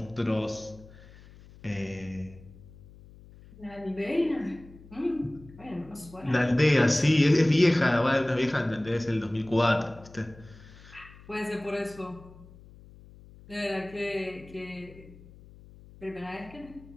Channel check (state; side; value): noise; left; hum, 21 dB below the sound